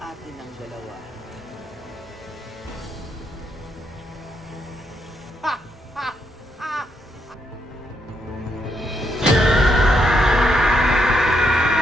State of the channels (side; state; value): both; normal; correlation 0.78